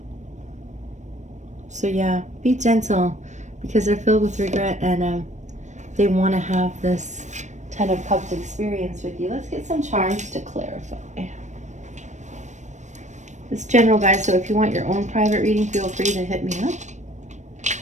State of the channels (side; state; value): left; late; 0.34 ms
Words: So yeah, be gentle, because they're filled with regret, and they want to have this 10 of Cups experience with you. Let's get some charms to clarify. It's general, guys, so if you want your own private reading, feel free to hit me up.